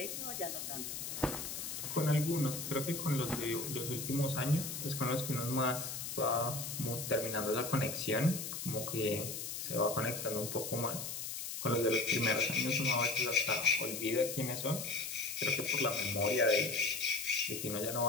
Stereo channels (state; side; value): noise; left; hiss, 5 dB below the sound